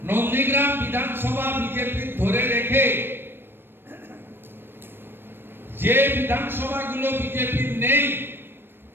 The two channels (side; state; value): left; late; 0.10 ms